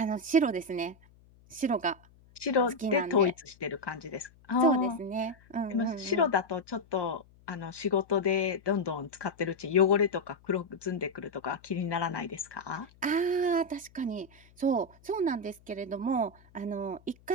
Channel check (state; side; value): noise; left; hum, 28 dB below the sound